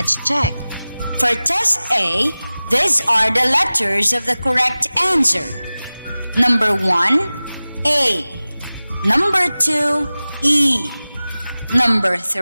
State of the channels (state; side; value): inverted; both; correlation -0.97